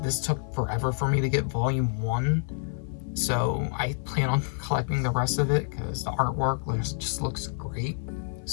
This took forever for me to get volume 1, so I plan on collecting the rest of it because the artwork just looks great.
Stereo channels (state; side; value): silent; right; 58 dB below the other